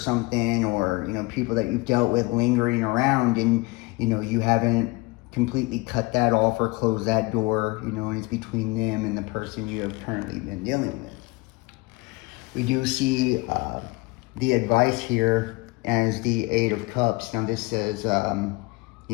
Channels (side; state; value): right; quieter; 23.6 dB